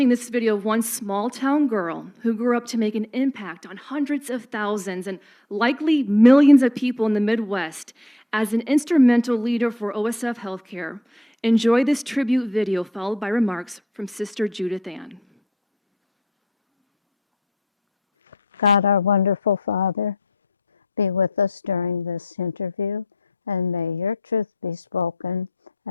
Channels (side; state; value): both; normal; correlation 0.63